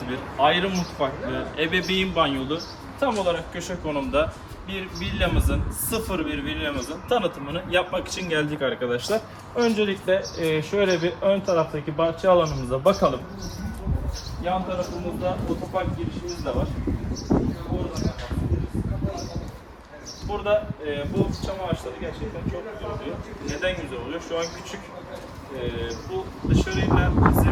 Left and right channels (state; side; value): identical; both; correlation 1.00